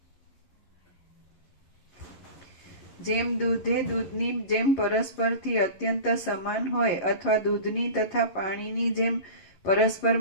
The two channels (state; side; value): late; right; 11 ms